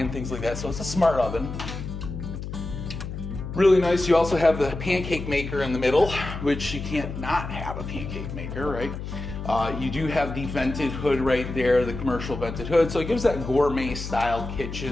things like that. So it's a smart oven. Really nice. You also have the pancake maker in the middle, which you can't not have a pancake maker, right? You do have the vented hood right there, the commercial vented hood. So it gives that gourmet style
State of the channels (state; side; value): noise; left; hum, 7 dB below the sound